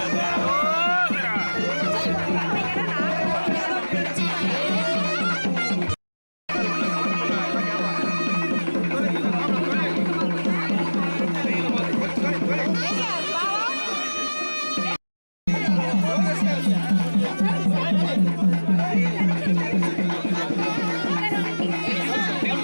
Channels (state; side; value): inverted; both; correlation -1.00